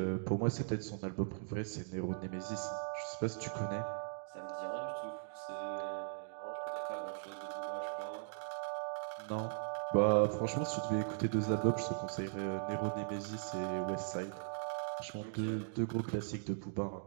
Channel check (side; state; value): left; silent; digital silence